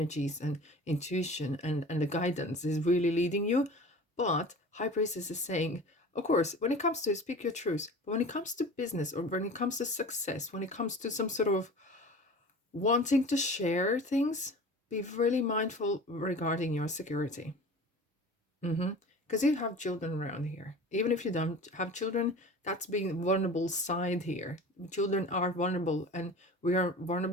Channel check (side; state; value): both; normal; correlation 0.38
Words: and intuition and the guidance is really leading you. But High Priestess is saying, of course, when it comes to speak your truth, but when it comes to business, or when it comes to success, when it comes to some sort of wanting to share things, be really mindful regarding your security. Because you have children around here. Even if you don't have children, that's being vulnerable side here. Children are vulnerable, and we are